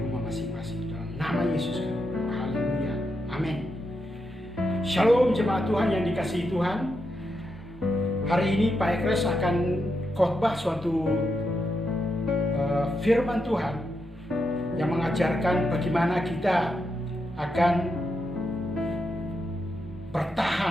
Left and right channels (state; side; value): normal; both; correlation 0.84